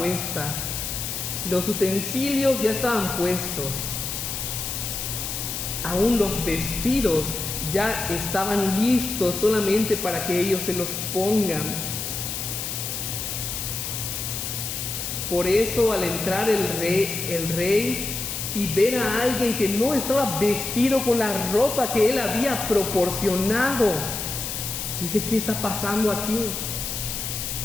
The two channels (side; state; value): left; noise; hiss, 4 dB below the sound